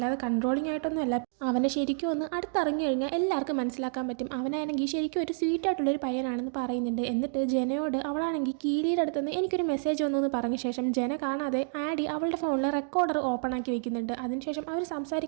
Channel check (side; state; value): left; silent; digital silence